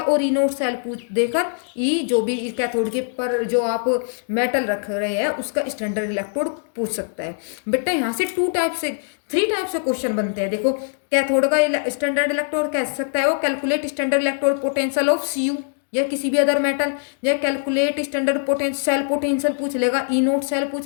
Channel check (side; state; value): right; silent; digital silence